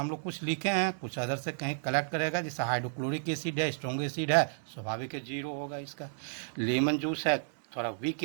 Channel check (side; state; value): left; silent; digital silence